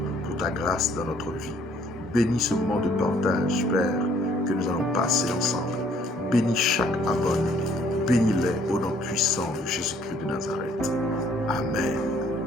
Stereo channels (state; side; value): normal; both; correlation 0.62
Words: pour ta grâce dans notre vie. Bénis ce moment de partage, Père, que nous allons passer ensemble. Bénis chaque abonné. Bénis-les au nom puissant de Jésus-Christ de Nazareth. Amen.